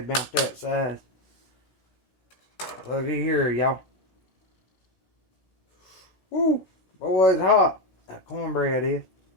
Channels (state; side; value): late; right; 16 ms